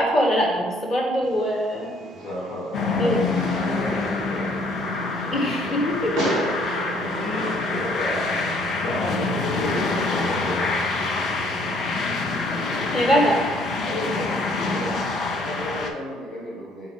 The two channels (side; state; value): both; normal; correlation 0.62